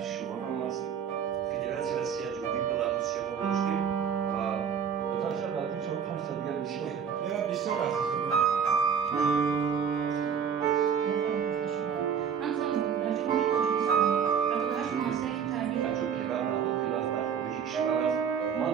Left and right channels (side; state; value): left; quieter; 7.3 dB